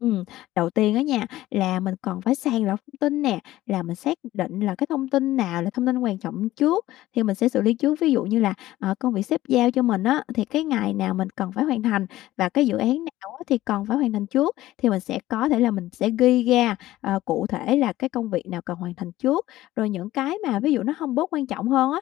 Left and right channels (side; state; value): right; quieter; 15.6 dB